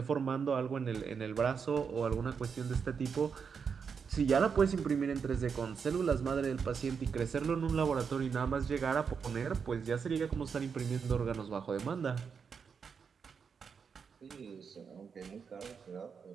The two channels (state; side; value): quieter; left; 6.2 dB